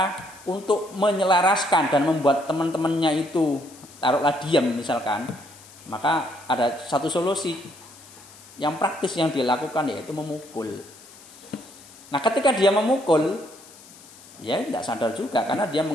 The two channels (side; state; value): left; noise; hiss, 21 dB below the sound